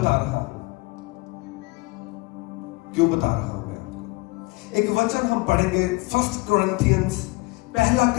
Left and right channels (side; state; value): right; quieter; 24.2 dB